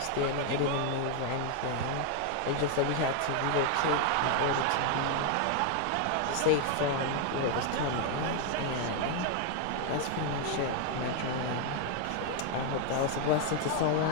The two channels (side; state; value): both; different; correlation 0.01